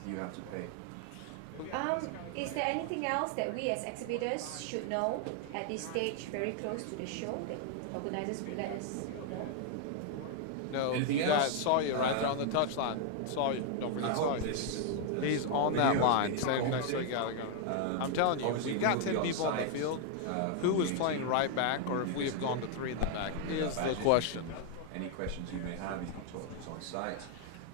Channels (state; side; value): different; both; correlation 0.00